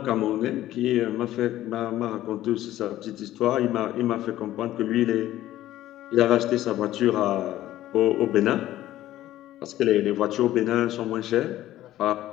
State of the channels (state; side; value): quieter; right; 14.1 dB